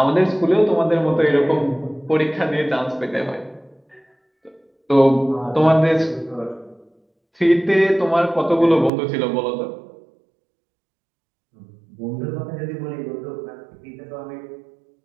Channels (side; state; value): left; drops out; at 8.9 s